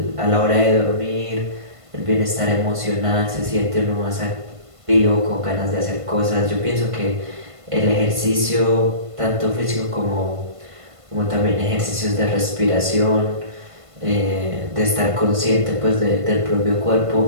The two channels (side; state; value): left; late; 1.5 ms